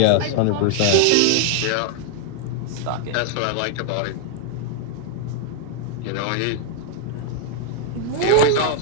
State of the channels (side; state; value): both; different; correlation 0.00